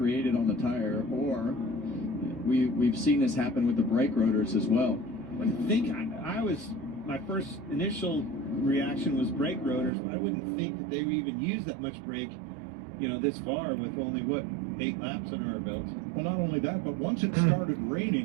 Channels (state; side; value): drops out; left; at 9.9 s